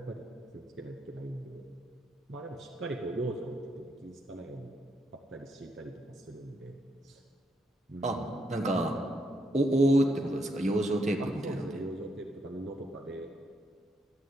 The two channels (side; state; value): both; normal; correlation 0.77